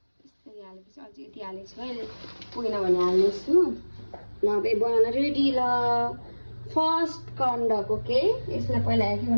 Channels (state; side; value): inverted; both; correlation -1.00